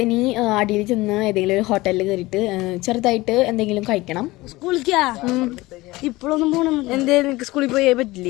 ഇനി അടിയിൽ ചെന്ന് ഏതെങ്കിലും ഒരു ഹോട്ടലിൽ കയറിയിട്ട് ചെറുതായിട്ട് എന്തെങ്കിലും കഴിക്കണം. സ്കൂളിക്കാ ഇപ്പോഴൊന്നും പോകണം. എന്തേലും സ്കൂളിൽ പോയേ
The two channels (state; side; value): quieter; right; 19.9 dB